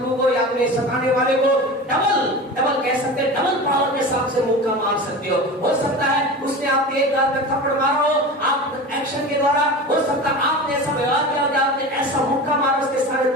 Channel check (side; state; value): both; normal; correlation 0.31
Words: को या अपने सताने वाले को डबल कह सकते हैं, डबल पावर के साथ से मुक्का मार सकते हो सकता है उसने आपके एक गाल पे थप्पड़ मारा हो, आप एक्शन के द्वारा, हो सकता है आपने ऐसा व्यवहार किया कि आपने ऐसा मुक्का मारा उसके सारे